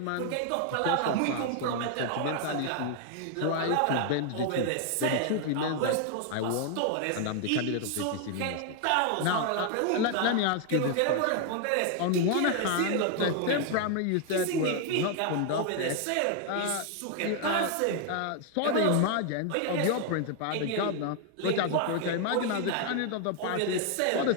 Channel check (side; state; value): both; different; correlation 0.00